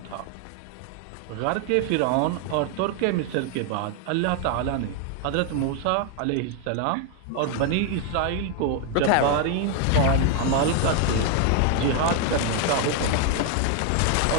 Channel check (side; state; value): both; different; correlation 0.01